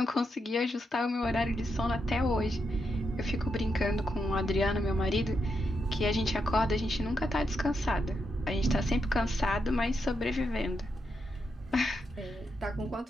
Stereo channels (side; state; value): both; normal; correlation 0.83